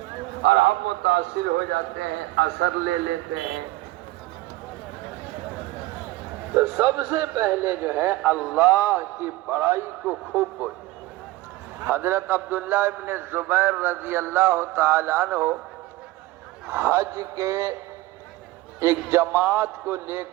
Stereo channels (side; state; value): left; quieter; 18.5 dB